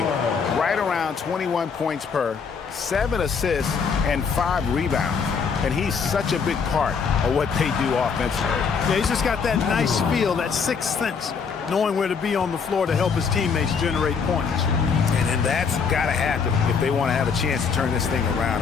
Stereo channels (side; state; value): right; quieter; 5.8 dB